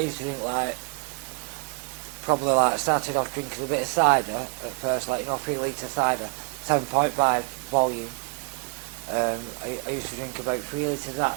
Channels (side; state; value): left; quieter; 30.6 dB